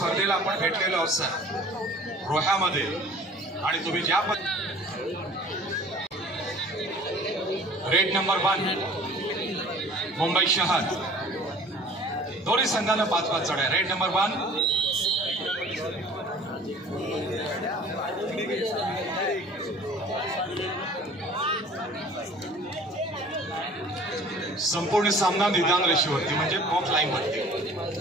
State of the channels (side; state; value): both; normal; correlation 0.48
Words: आपण भेटलेलो आहोत सर रोह्यामध्ये, आणि तुम्ही ज्या रेड नंबर 1 मुंबई शहर, दोन्ही संघानं 5-5 चढ्या. रेड नंबर 1 संपूर्ण सामना निदान रेषेवरती म्हणजे बॉक्स लाईन वरती.